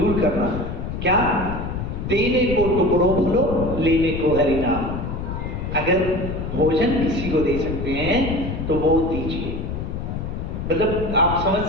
करना। क्या? देने को टुकड़ों भलो, लेने को हरि नाम। अगर भोजन किसी को दे सकते हैं तो वो दीजिए। मतलब आप समझ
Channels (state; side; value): noise; left; rumble, 5 dB below the sound